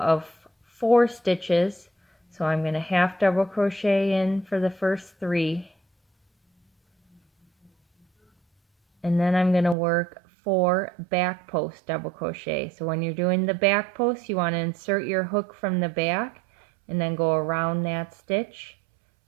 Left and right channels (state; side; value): drops out; left; at 9.8 s